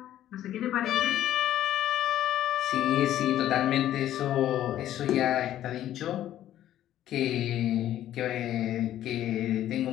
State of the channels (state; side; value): quieter; right; 12.3 dB